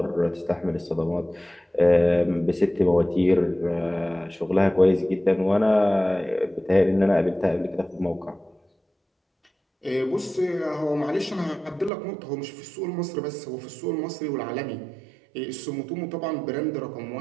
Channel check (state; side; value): drops out; left; at 11.9 s